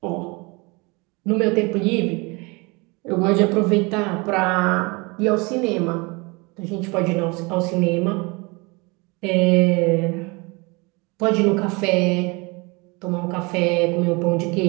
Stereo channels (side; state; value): left; quieter; 27.5 dB